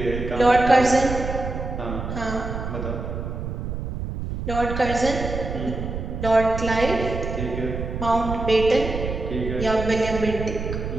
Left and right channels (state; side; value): noise; right; rumble, 5 dB below the sound